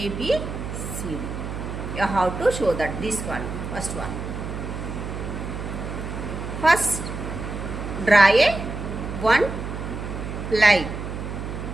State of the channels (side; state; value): right; noise; hum, 6 dB below the sound